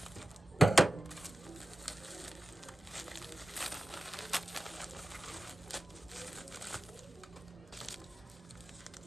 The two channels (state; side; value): normal; both; correlation 0.94